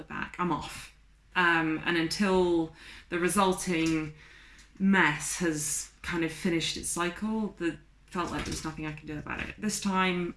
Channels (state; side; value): identical; both; correlation 1.00